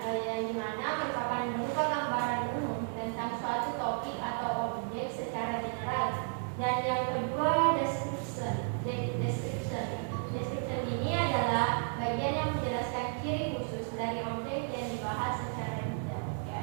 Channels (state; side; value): silent; left; 56 dB below the other